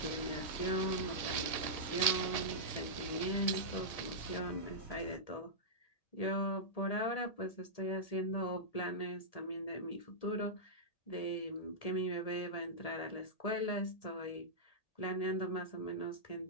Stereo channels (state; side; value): late; right; 1.8 ms